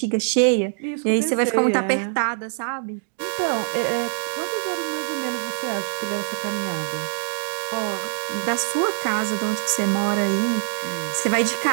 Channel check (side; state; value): left; silent; digital silence